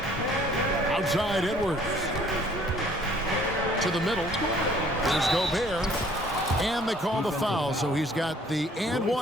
Outside Edwards. To the middle. There's Gobert. And they call the foul, so he's got the and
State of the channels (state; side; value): normal; both; correlation 0.58